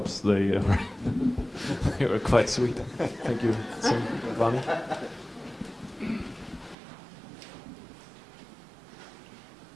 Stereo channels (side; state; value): left; drops out; at 6.8 s